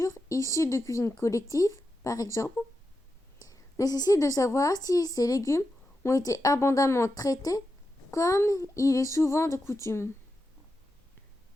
issues de cuisine collective, par exemple, nécessite de savoir si ces légumes ont été abondamment traités comme il est souvent de coutume.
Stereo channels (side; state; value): both; normal; correlation 0.89